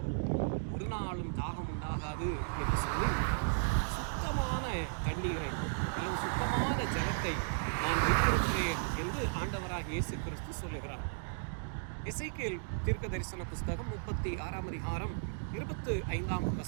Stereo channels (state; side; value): silent; left; digital silence